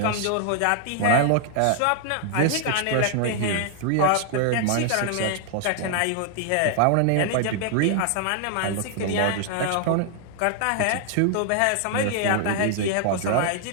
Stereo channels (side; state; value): both; different; correlation 0.00